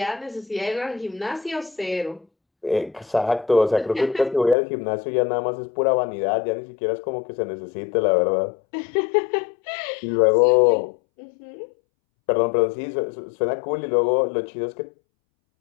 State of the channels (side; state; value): right; drops out; at 4.5 s